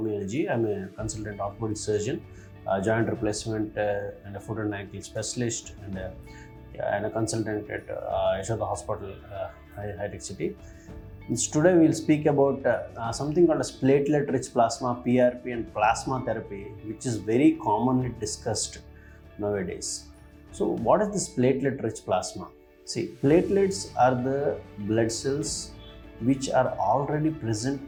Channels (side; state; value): both; identical; correlation 1.00